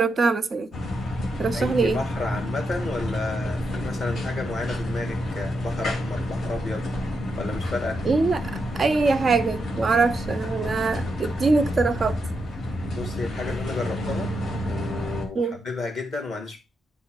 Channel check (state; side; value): normal; both; correlation 0.83